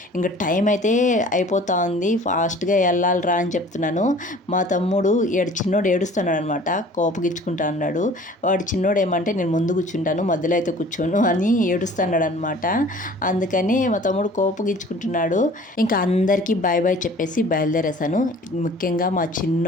ఇంకా టైం అయితే అయిపోతా ఉంది, ఫాస్ట్గా వెళ్ళాలిరా అని చెప్తున్నాను. మా తమ్ముడు చిన్నోడు ఏడుస్తున్నాడు అనమాట, కోపగిచ్చుకుంటా అన్నాడు. వాడు చిన్నోడు ఏమంటే నేను ముందు కూర్చుంటాను, మధ్యలో అయితే కూర్చోను అని ఏడుస్తున్నాడు అనమాట. అందుకని మా తమ్ముడు కోపగిచ్చుకుంటున్నాడు. ఇంకా అందరికీ బాయ్ బాయ్ చెప్పేసి బయలుదేరేసాను. ముఖ్యంగా మా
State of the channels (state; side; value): normal; both; correlation 0.48